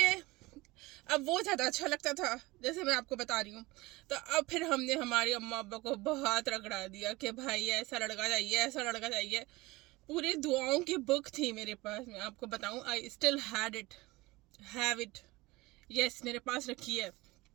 अब वो ज़्यादा अच्छा लगता था, जैसे मैं आपको बता रही हूँ। तो अब फिर हमने हमारी अम्मा अब्बा को बहुत रगड़ा दिया कि भाई ऐसा लड़का चाहिए, ऐसा लड़का चाहिए। पूरी दुआओं की बुक थी मेरे पास, मैं आपको बताऊँ, I still have it, yes, मेरे पास रखी है।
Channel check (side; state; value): left; quieter; 21.3 dB